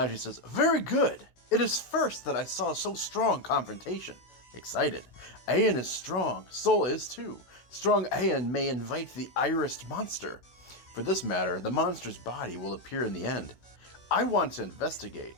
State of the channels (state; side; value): late; right; 16 ms